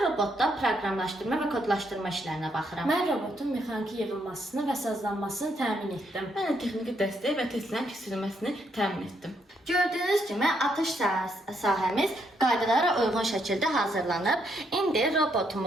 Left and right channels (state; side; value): normal; both; correlation 0.75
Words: robotda proqramlaşdırma və kodlaşdırma işlərinə baxıram. Mən robotun mexaniki yığılmasını və sazlanmasını təmin etdim. Mən də texniki dəstək və testlərin keçirilməsini təmin etdim. Gördüyünüz kimi atış sahəmiz qaydalara uyğun şəkildə hazırlanıb. İndi